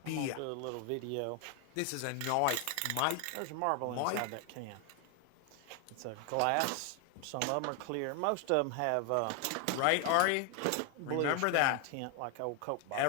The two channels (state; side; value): different; both; correlation 0.00